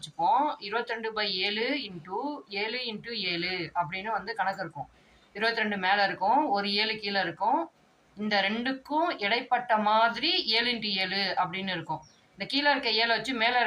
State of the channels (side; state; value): both; identical; correlation 1.00